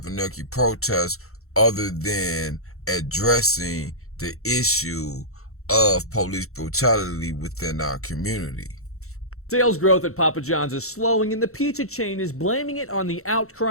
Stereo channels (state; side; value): late; right; 0.63 ms